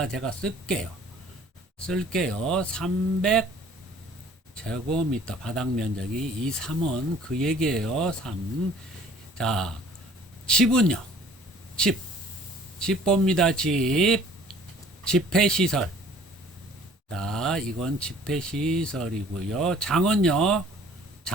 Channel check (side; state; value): both; normal; correlation 0.52